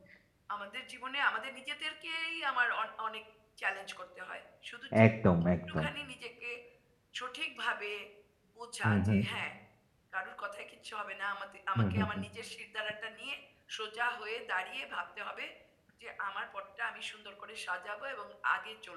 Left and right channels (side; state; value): both; identical; correlation 1.00